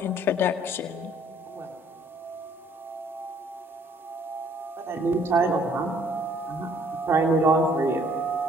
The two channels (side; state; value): both; normal; correlation 0.61